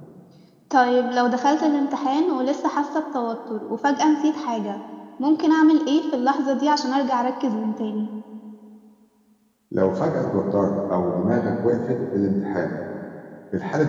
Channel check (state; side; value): identical; both; correlation 1.00